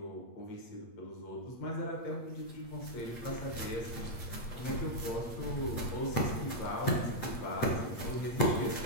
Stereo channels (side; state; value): right; late; 8.5 ms